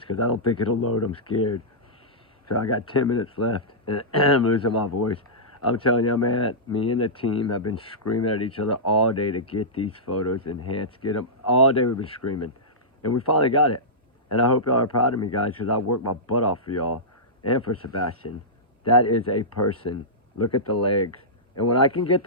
because I don't think it'll load. I'm scared. So I got 10 minutes left, and I'm losing my voice. I'm telling you, man, me and the team have been screaming at each other all day to get these photos enhanced, get them. All day we've been screaming, and we finally got it. And I hope y'all are proud of me, guys, because I worked my butt off for y'all and for Sebastian. That is a person. Look at the legs. And when I can get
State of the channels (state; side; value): normal; both; correlation -0.15